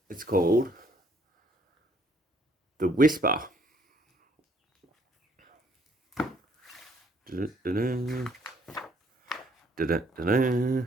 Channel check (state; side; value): normal; both; correlation 0.65